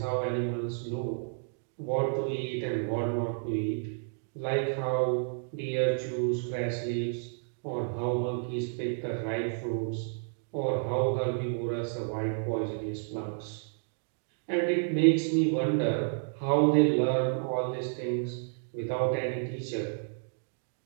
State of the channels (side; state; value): left; silent; digital silence